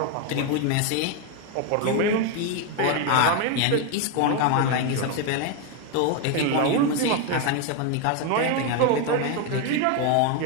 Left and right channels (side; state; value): both; different; correlation 0.02